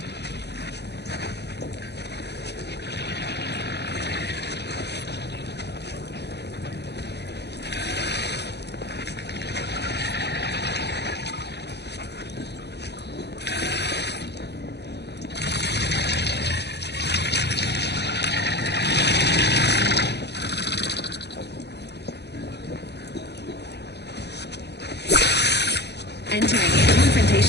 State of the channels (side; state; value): right; late; 0.49 ms